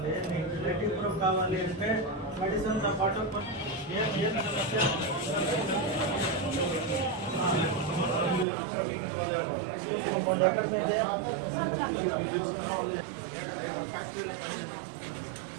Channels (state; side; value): drops out; left; at 8.5 s